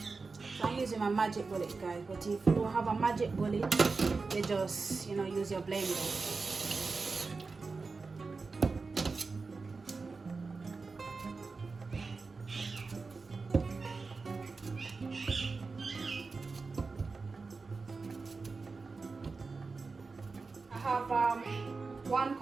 I'm using my magic bullet, guys, but if you don't have a magic bullet, you just, use your blender. I have 1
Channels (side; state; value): left; quieter; 4.2 dB